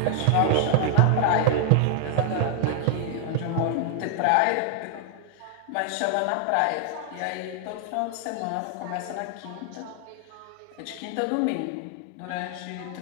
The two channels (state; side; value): different; both; correlation 0.00